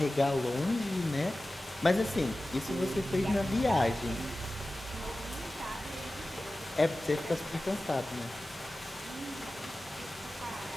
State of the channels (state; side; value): normal; both; correlation 0.95